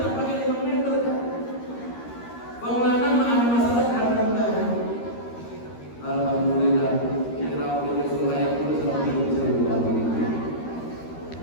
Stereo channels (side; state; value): right; late; 13 ms